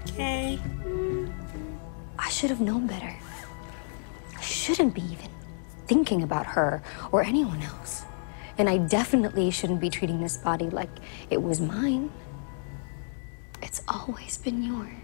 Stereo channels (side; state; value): right; silent; 58 dB below the other